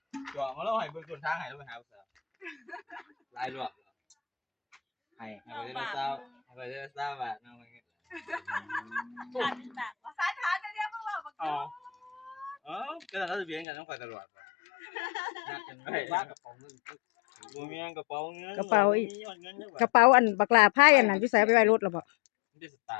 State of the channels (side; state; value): right; drops out; at 13.7 s